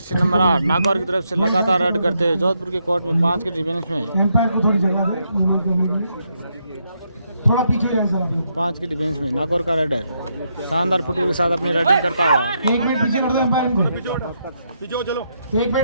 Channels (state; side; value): inverted; both; correlation -0.79